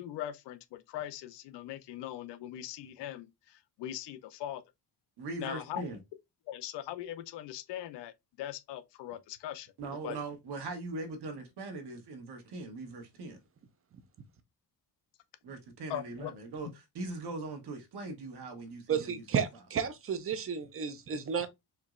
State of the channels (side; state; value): both; normal; correlation 0.00